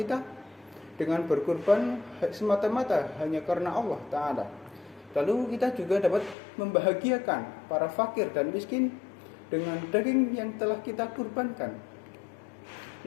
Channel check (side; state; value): right; drops out; at 6.4 s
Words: dengan berkurban semata-mata hanya karena Allah Ta'ala. Lalu kita juga dapat membahagiakan para fakir dan miskin dengan daging yang telah kita kurbankan.